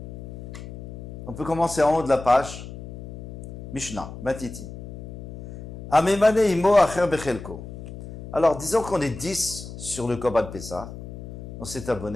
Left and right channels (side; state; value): left; noise; hum, 13 dB below the sound